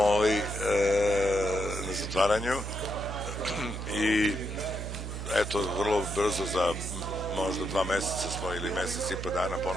na zatvaranju i eto, vrlo brzo za možda 2 meseca smo ili mesec i po dana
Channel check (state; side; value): noise; right; hum, 6 dB below the sound